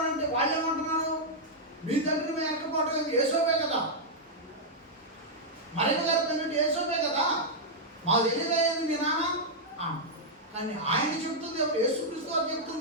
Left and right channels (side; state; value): both; normal; correlation -0.06